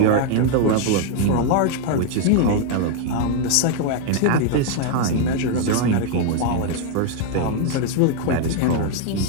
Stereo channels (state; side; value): different; both; correlation 0.00